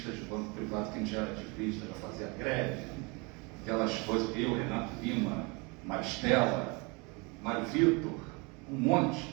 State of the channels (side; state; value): left; quieter; 29.3 dB